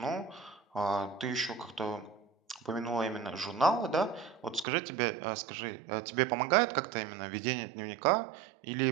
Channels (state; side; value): drops out; left; at 4.7 s